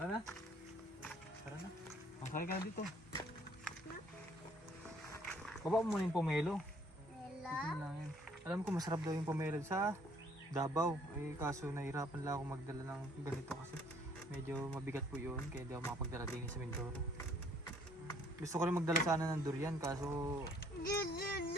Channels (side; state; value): both; normal; correlation 0.61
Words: na. Tara na. Kaya ka na dito. Baba mo muna yung pomelo. Ito lang yan. Alam ko masarap daw yung pomelo sa Davao. Eh kaso nahirapan lang ako magdala ng ganito kasi medyo mabigat po yun. Kaya hindi ako makapagdala din sa Mindoro. Gusto ko rin magdala sana ng durian kaso